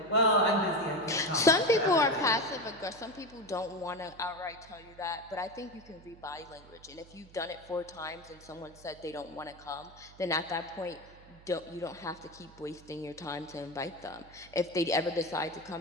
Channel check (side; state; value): right; noise; hum, 22 dB below the sound